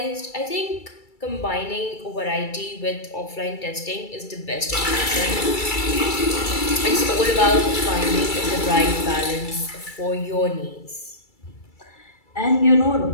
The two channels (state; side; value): late; right; 2.3 ms